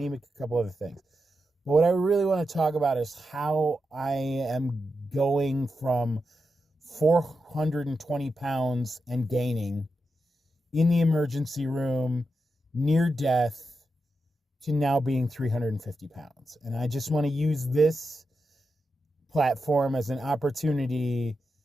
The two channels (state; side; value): normal; both; correlation 0.87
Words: a couple other things. But what I really want to talk about is how I am going from 420 pounds and gaining in the emergency room, near death, to now being 350 pounds. And I just want to use this platform as an opportunity